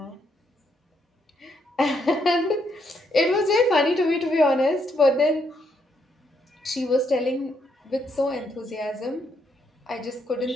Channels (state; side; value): normal; both; correlation 0.75